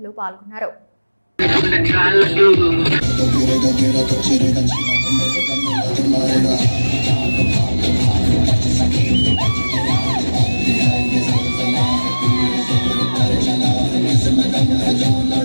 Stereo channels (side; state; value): both; inverted; correlation -1.00